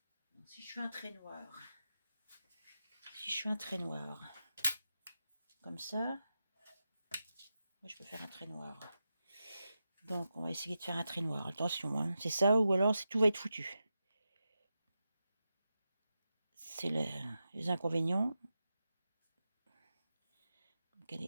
Si je fais un trait noir. Si je fais un trait noir. Comme ça. Moi, je peux faire un trait noir. Donc, on va essayer de faire un trait noir. Attention, hein. C'est ça ou alors tout va être foutu. C'est les inconvénients. Donc,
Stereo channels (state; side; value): inverted; both; correlation -0.90